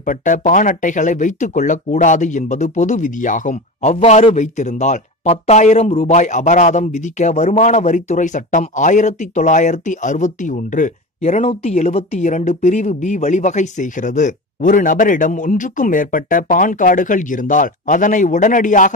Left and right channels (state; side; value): normal; both; correlation 0.27